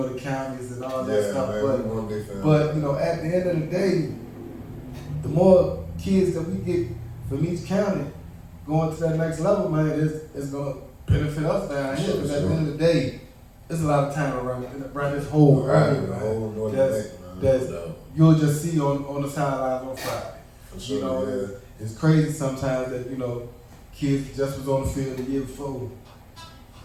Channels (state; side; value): identical; both; correlation 1.00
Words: the counties and all that stuff. Man, but you know, at the end of the day, the more kids that we get from each county going to that next level, man, it's gonna benefit us down here. Because at the end of the day, there's a lot of time around this whole area, man. That you'll just see on the sidelines on Friday. Sure, you know, it's crazy sometimes that, you know, kids just was on the field the year before.